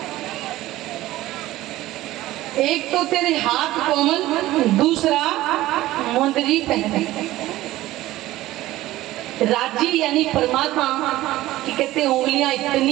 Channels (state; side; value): quieter; left; 16.3 dB